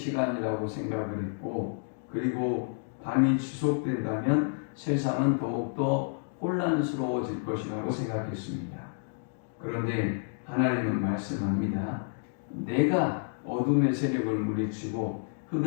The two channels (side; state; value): right; silent; digital silence